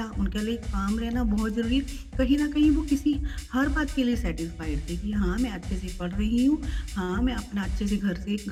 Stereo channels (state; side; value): identical; both; correlation 1.00